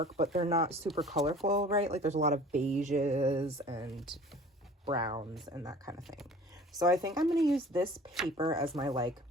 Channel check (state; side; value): normal; both; correlation 0.46